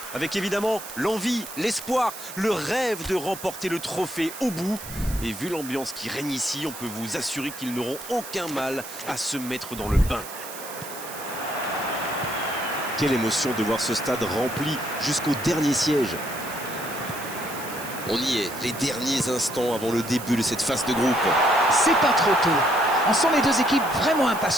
Avec évidemment l'envie, l'espoir, le rêve de remporter le trophée au bout. Et vu l'ambiance qui règne ici, on peut vous assurer qu'ils n'auront aucun mal à se mettre dans le bain. Quelle émotion de voir ce stade rempli jusqu'au dernier siège. On y est, les derniers instants avant le début de cette phase de groupe. C'est pas trop tôt. On sent les deux équipes vraiment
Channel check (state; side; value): noise; right; hiss, 12 dB below the sound